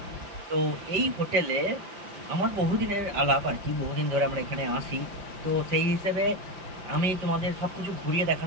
তো এই হোটেলে আমার বহুদিনের আলাপ আর কি, বহুদিন ধরে আমরা এখানে আসি। তো সেই হিসেবে আমি তোমাদের সব কিছু ঘুরিয়ে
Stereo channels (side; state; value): left; late; 5.3 ms